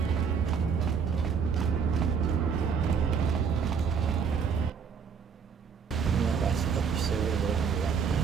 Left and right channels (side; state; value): left; quieter; 6.4 dB